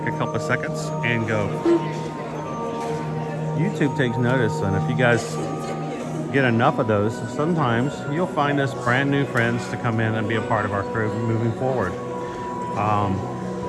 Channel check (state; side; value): identical; both; correlation 1.00